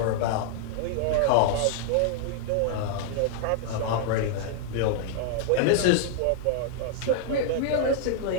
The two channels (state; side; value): different; both; correlation -0.01